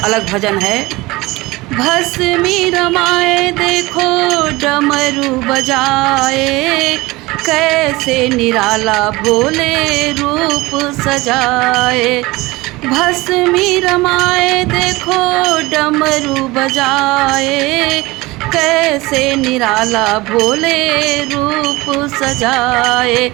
भजन है। भस्मी रमाए देखो डमरू बजाए, कैसे निराला भोले रूप सजाए। भस्मी रमाए देखो डमरू बजाए, कैसे निराला भोले रूप सजाए।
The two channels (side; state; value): left; quieter; 21.3 dB